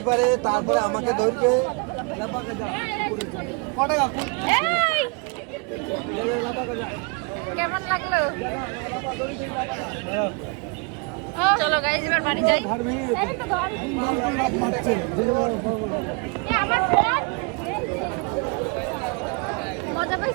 পারে, তারপরে আমাকে ধরবে। কেমন লাগলো? চলো গাইস এবার বাড়ি যাই। এই তো ঘর। মজা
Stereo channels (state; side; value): quieter; left; 32.1 dB